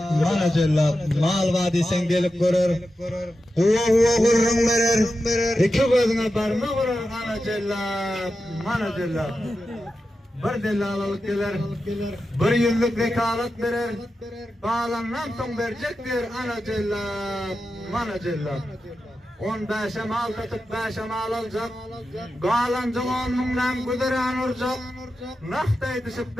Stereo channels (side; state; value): both; normal; correlation 0.91